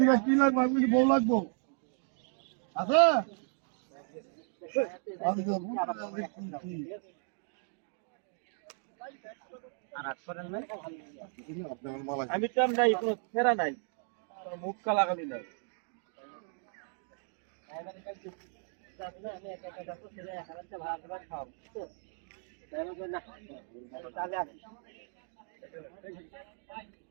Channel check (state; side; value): silent; left; 55 dB below the other